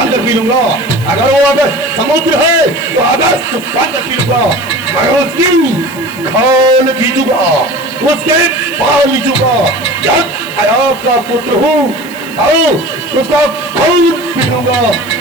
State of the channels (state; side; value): noise; right; hiss, 20 dB below the sound